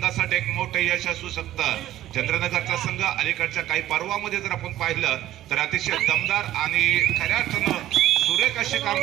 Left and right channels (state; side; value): quieter; left; 13.6 dB